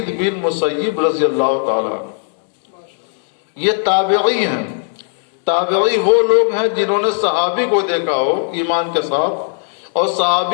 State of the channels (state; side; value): silent; right; 68 dB below the other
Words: بن مسیب رضی اللہ تعالی۔ یہ تابعی ہیں۔ تابعی وہ لوگ ہیں جنہوں نے صحابی کو دیکھا ہو ایمان کے ساتھ، اور